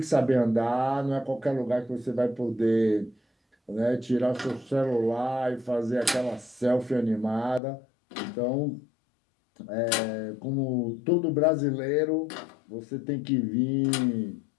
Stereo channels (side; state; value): right; drops out; at 7.6 s